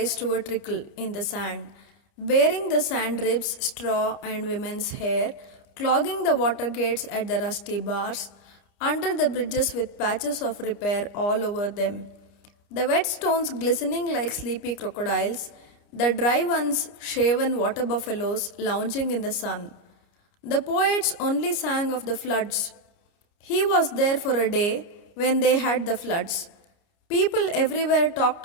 to a trickle in the sand, bearing the sand ribs, straw and women's hair, clogging the water gates at the rusty bars, under the bridges with patches of repair all over them. The wet stones glistening like sleepy crocodiles, the dry ones shaven water buffaloes lounging in the sun. The poets only sang of the floods. He was there for a day when they had the floods. People everywhere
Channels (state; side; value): late; right; 29 ms